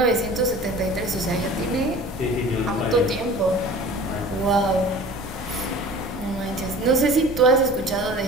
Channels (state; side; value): normal; both; correlation 0.42